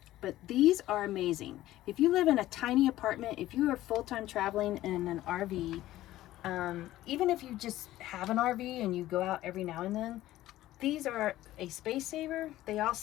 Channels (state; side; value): quieter; right; 15.1 dB